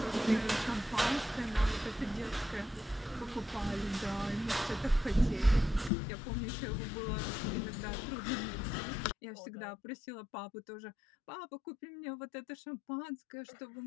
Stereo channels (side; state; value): right; drops out; at 5.9 s